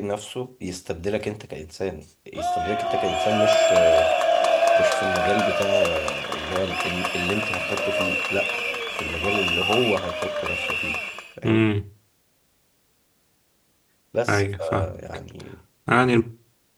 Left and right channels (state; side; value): identical; both; correlation 1.00